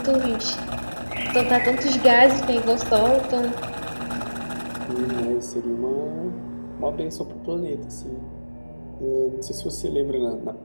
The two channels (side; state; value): both; inverted; correlation -1.00